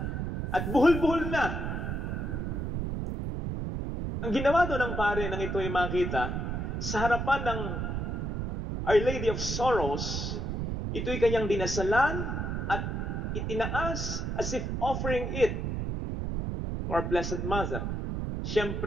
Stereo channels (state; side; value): noise; right; rumble, 2 dB below the sound